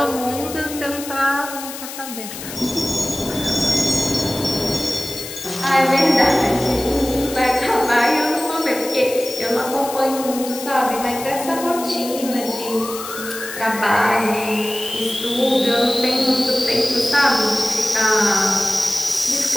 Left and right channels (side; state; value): left; noise; hiss, 10 dB below the sound